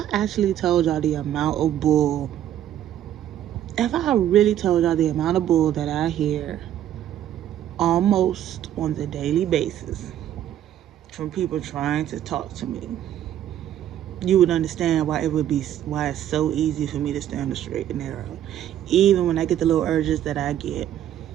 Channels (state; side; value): quieter; left; 11.3 dB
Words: told y'all the amount of bull, if I really told y'all the amount of bull that I hear almost on the daily basis from people trying to talk to me, you would understand why it's so easy for me to stay on the straight and narrow, even when I get the little urges that I get.